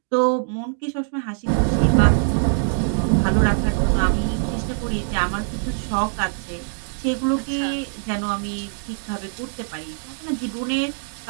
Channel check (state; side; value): silent; left; digital silence